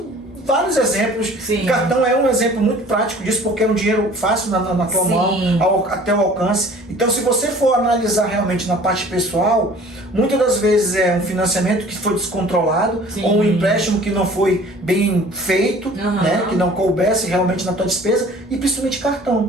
vários exemplos. Sim. Cartão é um exemplo muito prático disso, porque é um dinheiro fácil na tua mão, até o alcance. Então, se você for analisar realmente na parte pessoal, muitas das vezes é um financiamento que foi descontrolado, sim, ou um empréstimo que não foi bem feito, né? Que não coubesse realmente na tua despesa, e principalmente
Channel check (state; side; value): normal; both; correlation 0.49